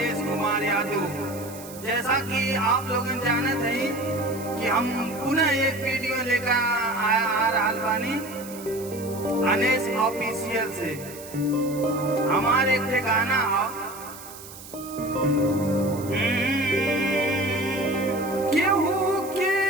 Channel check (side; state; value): right; noise; hiss, 16 dB below the sound